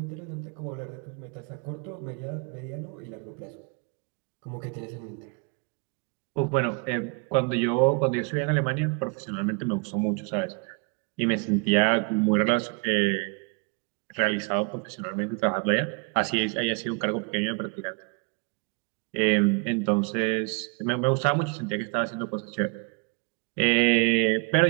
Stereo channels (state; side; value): quieter; left; 32.7 dB